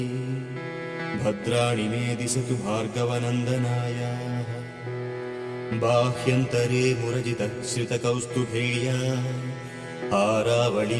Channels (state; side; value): identical; both; correlation 1.00